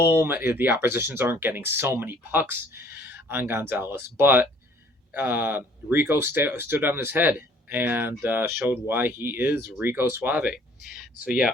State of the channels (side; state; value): both; normal; correlation 0.57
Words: many. The oppositions aren't getting so many pucks on Gonzalez, but Rico stood on his head and showed why he is Rico Suave. So yeah,